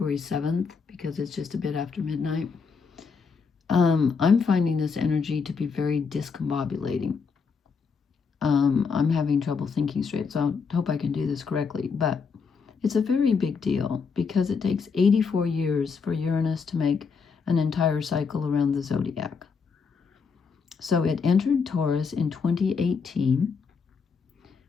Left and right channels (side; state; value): right; quieter; 5.4 dB